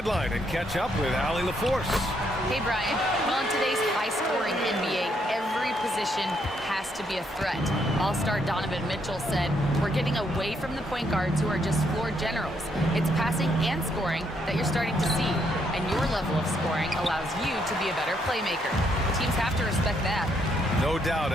and catch up with Allie LaForce. Hey, Brian. Well, in today's high-scoring NBA, every position has to be a threat. All-star Donovan Mitchell said, "We're getting away from the point guards who are just floor generals. It's passing and scoring that you're starting to see, and your level of scoring allows you to be a better playmaker. Teams have to respect that." No doubt,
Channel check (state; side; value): normal; both; correlation 0.73